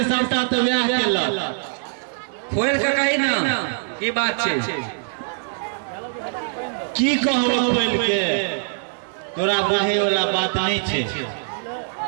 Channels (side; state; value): left; silent; digital silence